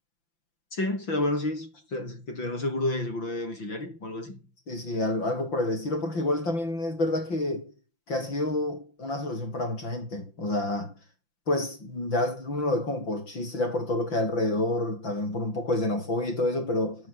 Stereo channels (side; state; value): right; late; 5.9 ms